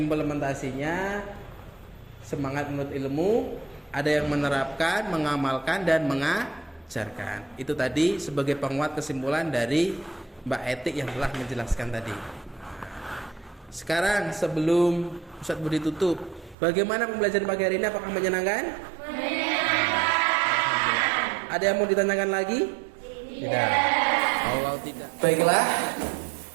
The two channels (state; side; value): drops out; left; at 16.6 s